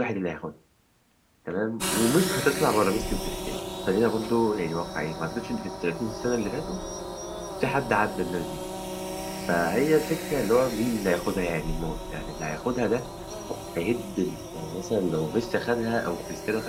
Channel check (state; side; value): identical; both; correlation 1.00